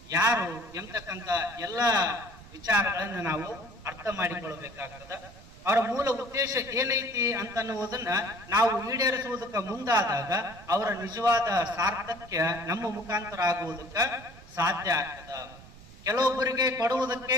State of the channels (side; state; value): right; noise; rumble, 20 dB below the sound